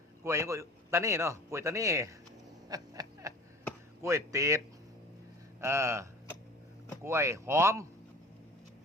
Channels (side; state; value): both; normal; correlation 0.42